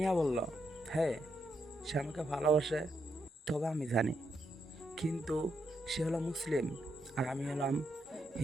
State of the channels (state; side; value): normal; both; correlation 0.80